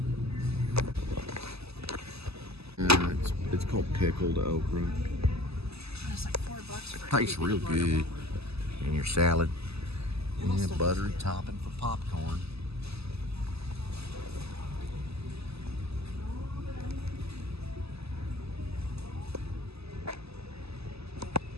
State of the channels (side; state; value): left; late; 0.79 ms